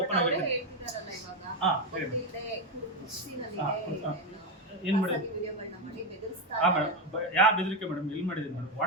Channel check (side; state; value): both; normal; correlation 0.09